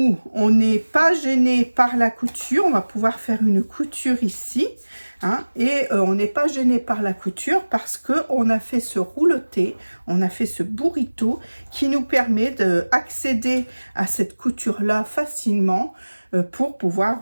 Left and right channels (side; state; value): both; inverted; correlation -1.00